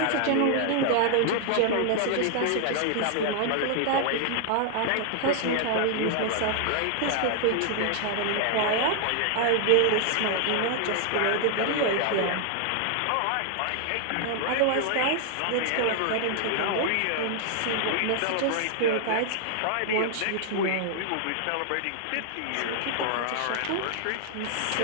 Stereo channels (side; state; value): both; different; correlation 0.00